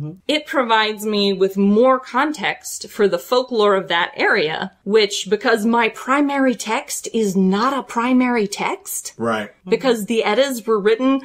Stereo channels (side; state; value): both; identical; correlation 1.00